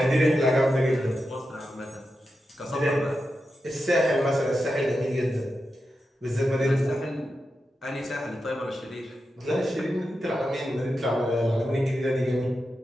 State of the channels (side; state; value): both; normal; correlation 0.89